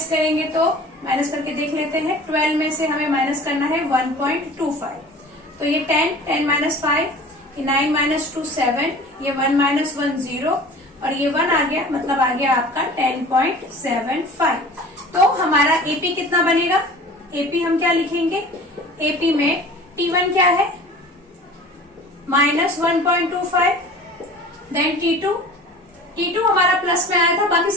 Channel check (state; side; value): normal; both; correlation 0.42